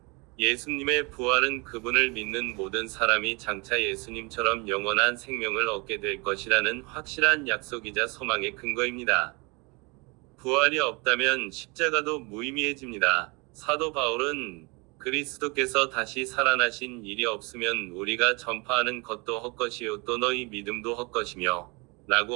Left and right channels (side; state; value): left; quieter; 28.7 dB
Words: 예수님의 부활은 그분을 믿는 모든 사람이 장차 예수님처럼 영원한 생명을 얻게 될 것이라는 확실한 약속이자 소망의 근거입니다. 부활이 없다면 십자가도 무의미해집니다. 사도 바울은 그리스도께서 다시 살아나신 일이 없으면 우리가 전파하는 것도 헛것이요 또 너희 믿음도 헛것이며